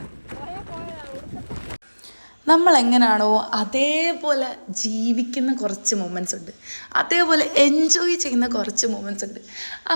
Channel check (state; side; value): inverted; both; correlation -1.00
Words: നമ്മൾ എങ്ങനെയാണോ അതേപോലെ ജീവിക്കുന്ന കുറച്ച് മൊമെൻറ്റ്സ് ഉണ്ട്, അതേപോലെ എൻജോയ് ചെയ്യുന്ന കുറച്ച് മൊമെൻറ്റ്സ് ഉണ്ട്.